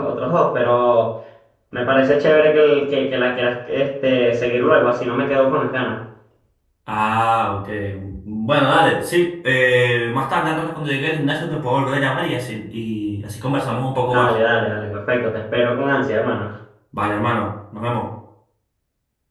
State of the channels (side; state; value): both; identical; correlation 1.00